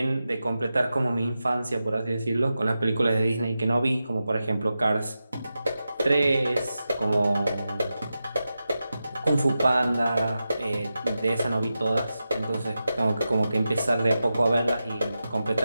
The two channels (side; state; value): both; inverted; correlation -0.91